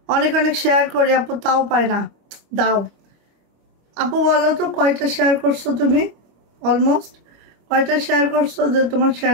অনেক অনেক শেয়ার করি আপু, তাও পায় না। দাও আপু, বলো তো কয়টা শেয়ার করছো তুমি? অলমোস্ট কয়টা শেয়ার করছো যে তোমার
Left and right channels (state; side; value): late; left; 25 ms